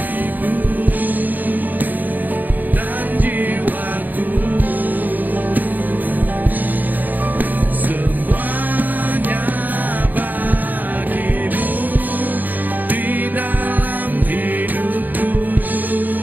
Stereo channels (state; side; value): late; left; 0.084 ms